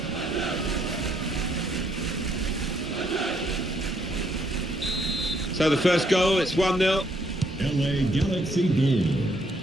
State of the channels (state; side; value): normal; both; correlation 0.71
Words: So the first goal, it's 1-0. LA Galaxy goal.